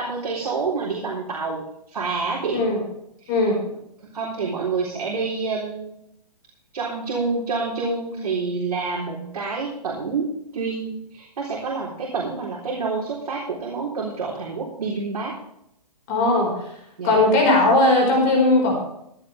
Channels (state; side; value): normal; both; correlation 0.02